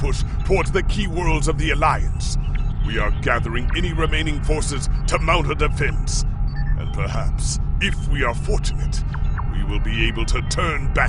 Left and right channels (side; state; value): both; identical; correlation 1.00